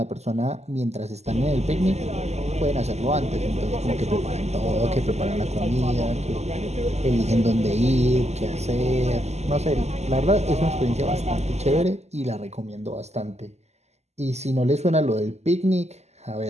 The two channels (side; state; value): left; late; 0.32 ms